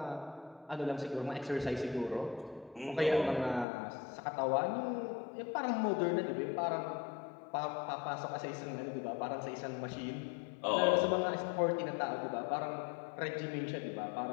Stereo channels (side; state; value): right; drops out; at 3.7 s